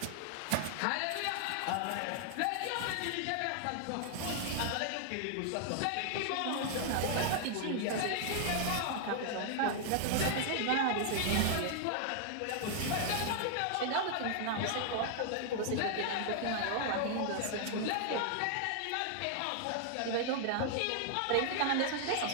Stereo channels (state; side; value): different; both; correlation 0.00